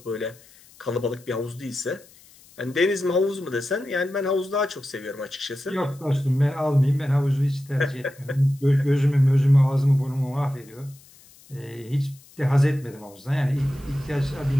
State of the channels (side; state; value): left; noise; hiss, 25 dB below the sound